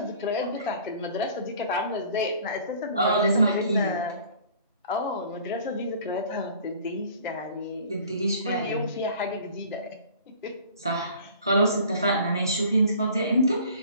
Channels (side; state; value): both; inverted; correlation -0.49